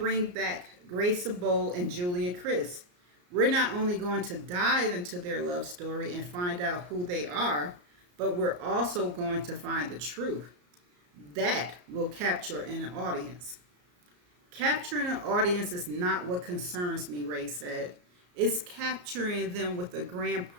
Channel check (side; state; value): left; late; 34 ms